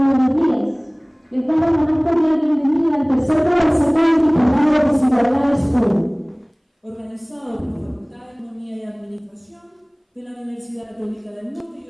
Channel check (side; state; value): both; identical; correlation 1.00